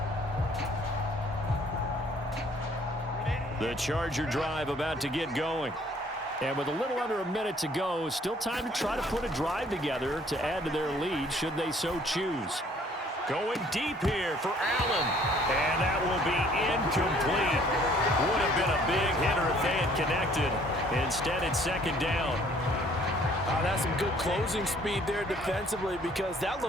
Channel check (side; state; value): both; normal; correlation 0.59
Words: The Charger drive about to get going. And with a little under a minute to go, still time to try to put a drive together to add to their lead should they so choose. Going deep here for Allen. And that will be incomplete. Would have been a big hitter if they had connected. Instead, it's second down. That's some good closing speed there defensively because that